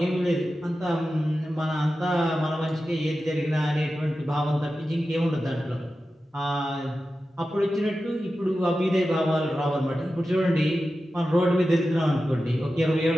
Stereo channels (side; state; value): both; normal; correlation 0.93